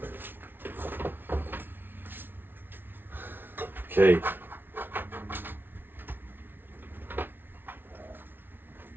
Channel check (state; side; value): late; left; 0.10 ms